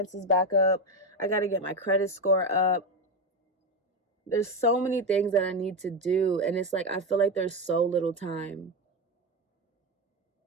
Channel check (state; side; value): normal; both; correlation 0.13